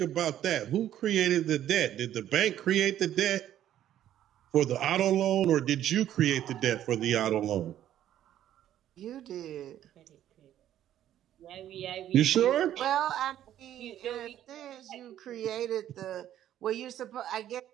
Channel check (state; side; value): quieter; left; 11.6 dB